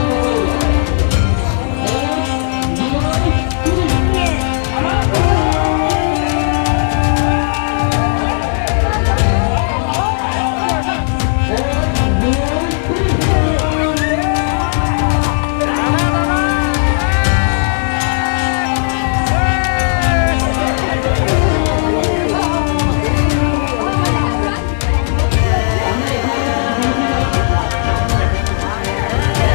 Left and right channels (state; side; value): silent; right; digital silence